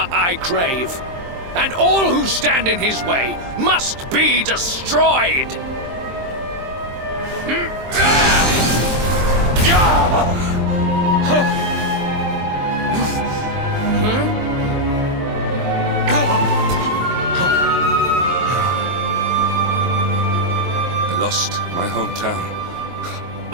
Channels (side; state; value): left; late; 23 ms